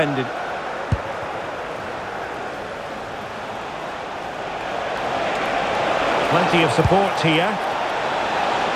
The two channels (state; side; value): identical; both; correlation 1.00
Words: Plenty of support here.